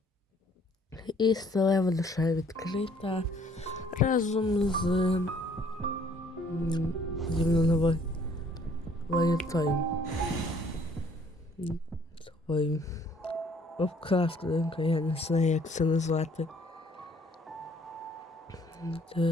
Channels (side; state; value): both; normal; correlation 0.60